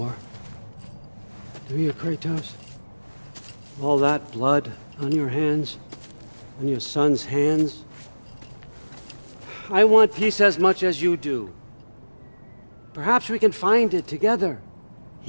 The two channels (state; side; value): inverted; both; correlation -1.00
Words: do you, Kratos? All that blood on your hands, on your son's hands. I want peace as much as you do. Perhaps we can find it together.